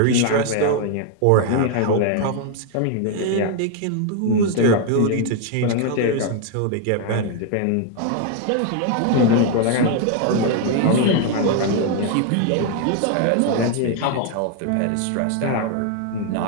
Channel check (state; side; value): different; both; correlation 0.00